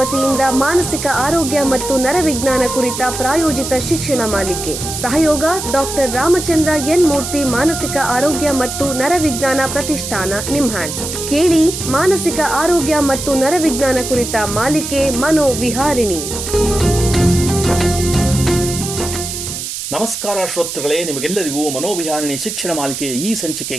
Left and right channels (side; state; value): right; noise; hiss, 6 dB below the sound